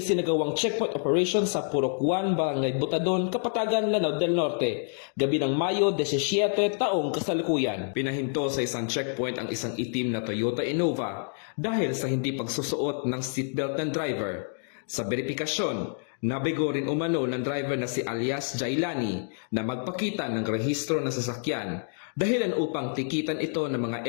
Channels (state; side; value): silent; right; 60 dB below the other